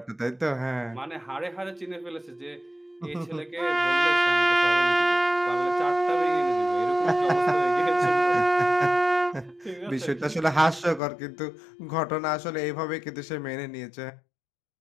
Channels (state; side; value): drops out; right; at 11.0 s